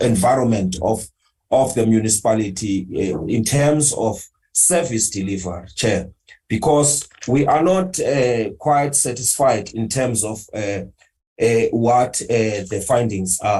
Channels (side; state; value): both; identical; correlation 1.00